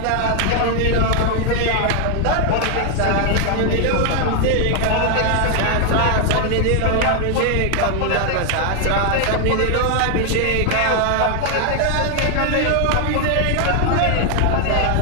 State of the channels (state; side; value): different; both; correlation 0.00